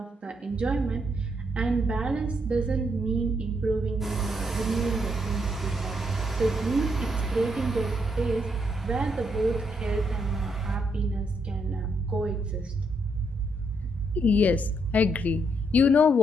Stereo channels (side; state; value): both; normal; correlation 0.76